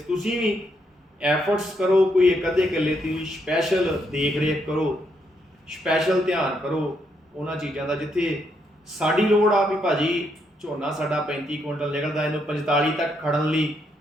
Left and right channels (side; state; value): both; normal; correlation 0.77